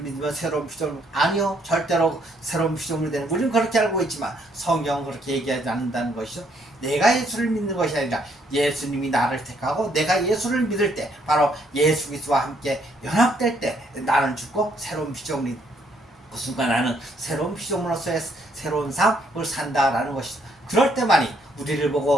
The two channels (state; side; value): normal; both; correlation 0.69